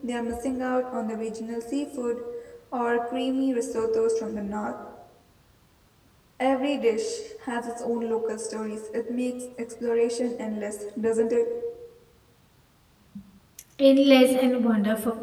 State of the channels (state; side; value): identical; both; correlation 1.00